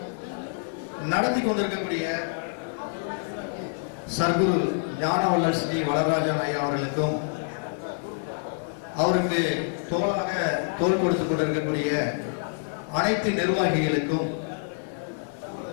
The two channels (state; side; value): silent; right; digital silence